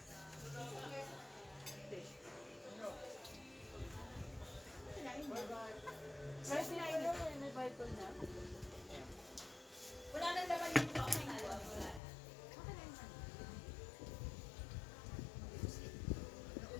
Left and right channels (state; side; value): drops out; right; at 12.0 s